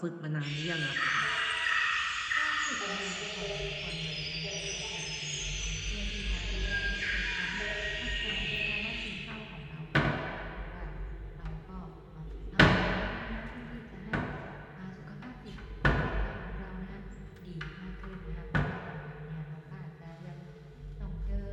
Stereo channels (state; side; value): identical; both; correlation 1.00